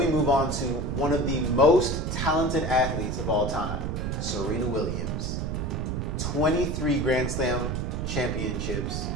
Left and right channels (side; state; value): right; noise; rumble, 1 dB below the sound